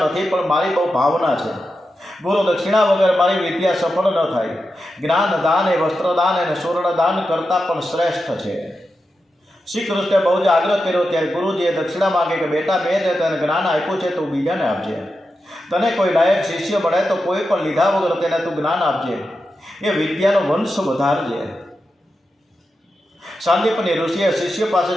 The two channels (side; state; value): both; normal; correlation 0.89